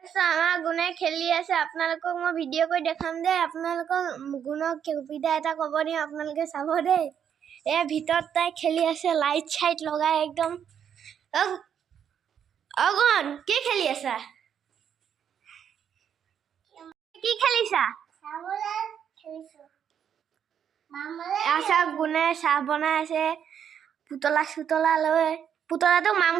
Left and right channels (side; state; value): left; quieter; 8.5 dB